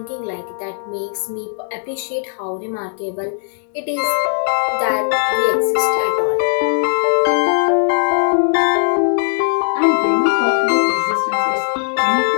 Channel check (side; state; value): right; silent; digital silence